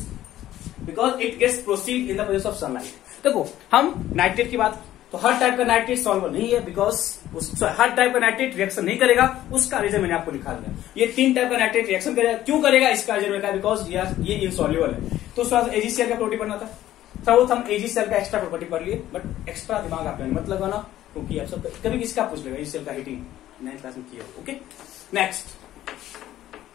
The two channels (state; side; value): quieter; right; 13.5 dB